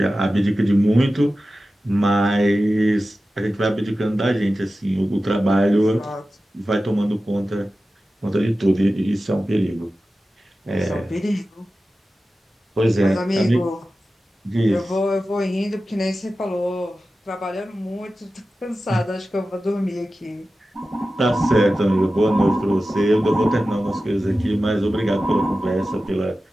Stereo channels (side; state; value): both; normal; correlation 0.94